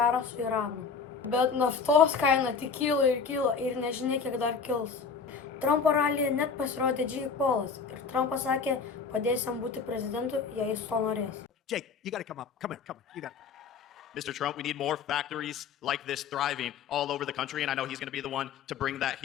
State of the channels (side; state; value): right; quieter; 5.6 dB